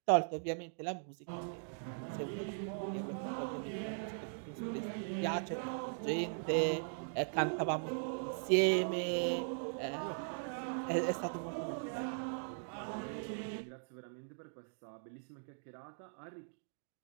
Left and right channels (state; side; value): silent; left; digital silence